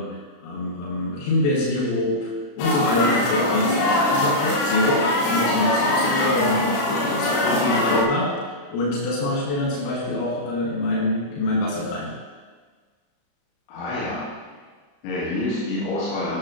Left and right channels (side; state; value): right; late; 35 ms